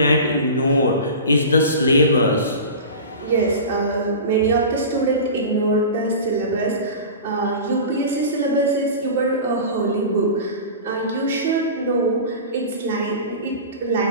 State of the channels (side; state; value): both; inverted; correlation -0.32